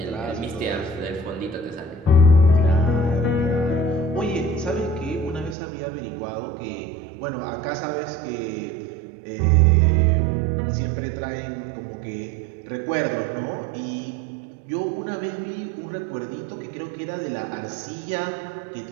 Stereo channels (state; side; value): drops out; left; at 5.6 s